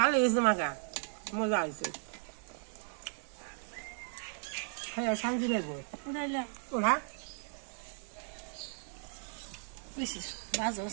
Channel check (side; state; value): left; silent; 54 dB below the other